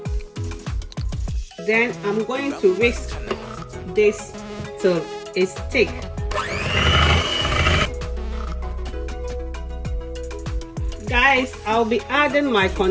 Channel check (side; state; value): both; identical; correlation 1.00